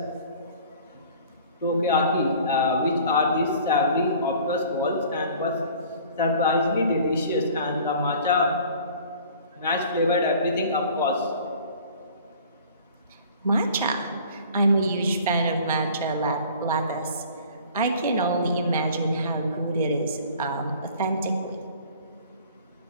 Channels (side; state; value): both; inverted; correlation -0.48